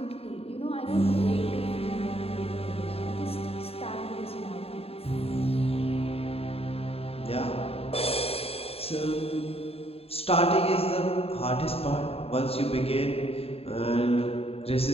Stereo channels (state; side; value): late; right; 0.28 ms